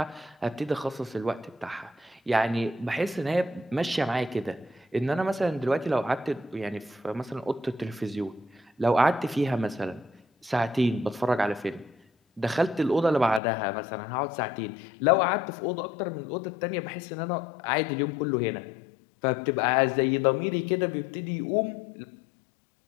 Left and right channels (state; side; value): drops out; right; at 13.4 s